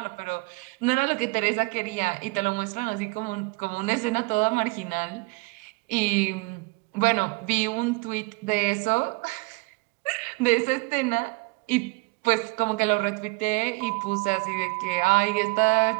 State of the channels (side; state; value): left; quieter; 26.5 dB